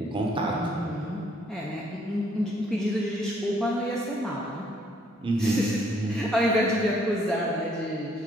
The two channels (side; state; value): both; normal; correlation 0.66